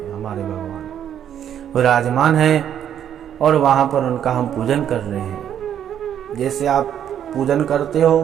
हमारे भगवान विराजमान हैं और वहाँ पर उनका हम पूजन कर रहे हैं। जैसे आप पूजन करते हो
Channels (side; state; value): left; quieter; 9.7 dB